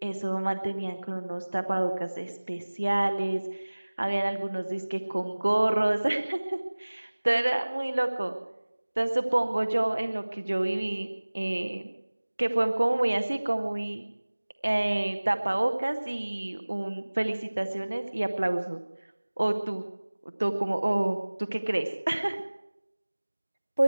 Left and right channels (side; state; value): both; inverted; correlation -1.00